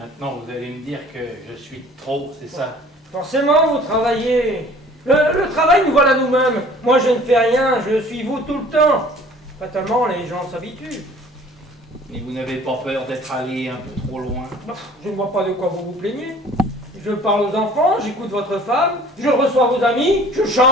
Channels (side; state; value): both; normal; correlation 0.50